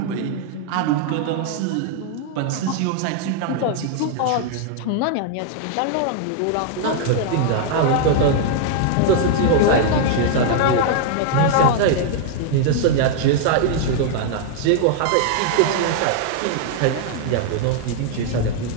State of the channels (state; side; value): different; both; correlation 0.00